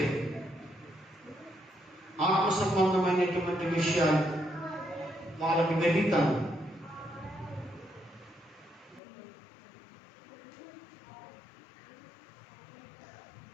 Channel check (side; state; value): right; drops out; at 9.0 s